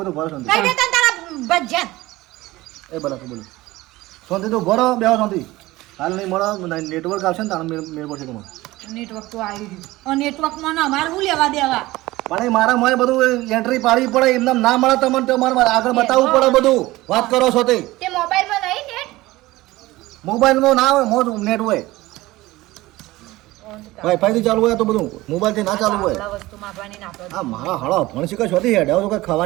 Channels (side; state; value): left; quieter; 18.7 dB